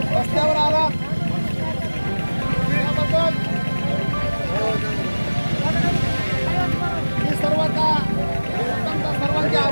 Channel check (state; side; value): inverted; both; correlation -1.00